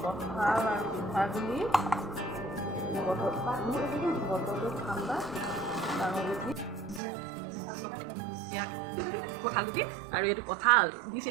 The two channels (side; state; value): left; drops out; at 7.0 s